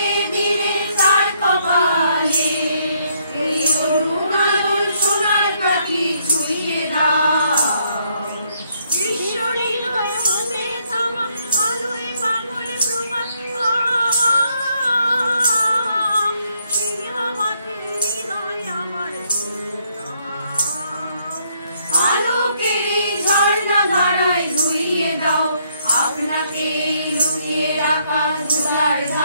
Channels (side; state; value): both; inverted; correlation -0.72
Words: ধীরে তার কপালে এই অরুণ আলোর সোনার পাখি ছুঁয়ে দাও। বিশ্ব হৃদয় হতে থামা আলোয় পাগল প্রভাত, সেই আমাকে হৃদয় আমার আলোকের ঝর্ণা ধারায়, ধুইয়ে দাও আপনাকে লুকিয়ে রাখা ধুলার